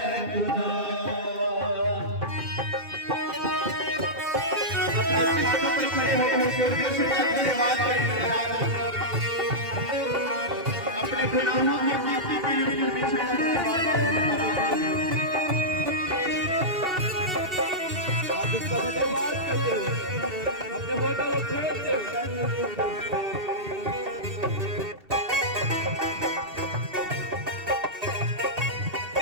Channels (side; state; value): left; late; 2.7 ms